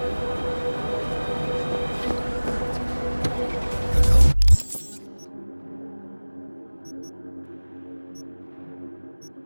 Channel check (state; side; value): inverted; both; correlation -1.00